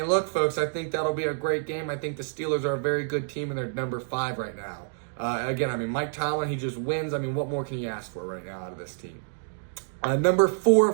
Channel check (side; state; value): left; silent; digital silence